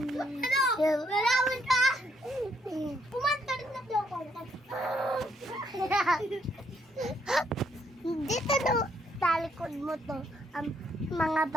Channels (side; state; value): both; normal; correlation 0.72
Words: Lalawan ka? Pumanta rin na daw ko. Dito no, talikod mo to, ang mga